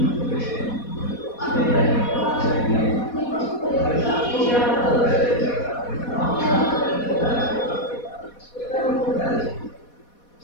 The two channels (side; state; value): right; late; 4.2 ms